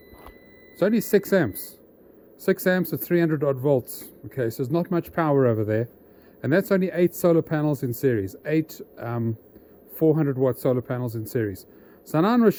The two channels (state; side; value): identical; both; correlation 1.00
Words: it's only 6 amps. 6 amps at 300 odd volts. Okay, so there's not much power over there. And that's only 8 solar panels in series. 8 400 watt solar panels in series. So now I'm going to